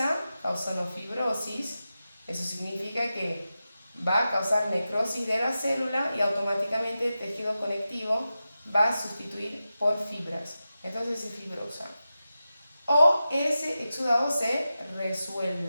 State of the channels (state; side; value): inverted; both; correlation -0.92